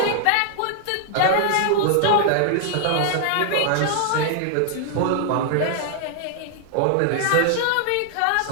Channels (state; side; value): different; both; correlation 0.00